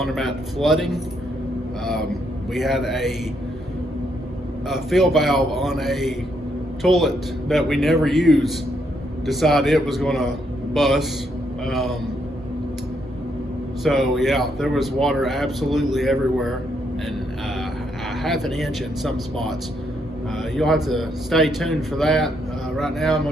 flooding. We had a fill valve on a toilet that we never use decide it was going to bust. So yeah, there was water absolutely everywhere, and a half an inch in some spots. You'll have to stay tuned for that. Right now I'm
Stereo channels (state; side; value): normal; both; correlation 0.75